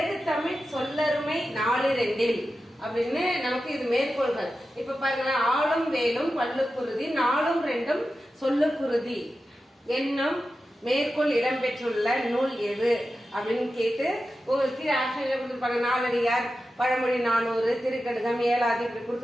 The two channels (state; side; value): normal; both; correlation 0.92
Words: தமிழ் சொல்லருமை நாலு ரெண்டில் அப்படின்னு நமக்கு இது மேற்கோள்கள். இப்ப பாருங்க, ஆளும் வேலும் பல்லுக்குருதி, நாளும் ரெண்டும் சொல்லுக்குருதி என்னும் மேற்கோள் இடம்பெற்றுள்ள நூல் எது அப்படின்னு கேட்டு உங்களுக்கு ஆப்ஷன்ல கொடுத்துருப்பாங்க. நாலடியார், பழமொழி 400, திருக்கடுகம், ஏழாதி இப்படி